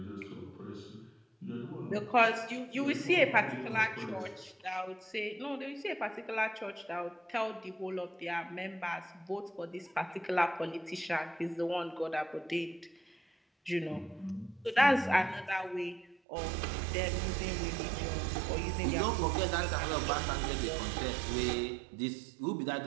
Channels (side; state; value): left; drops out; at 16.2 s